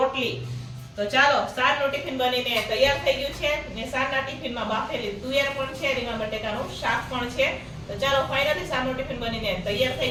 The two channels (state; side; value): identical; both; correlation 1.00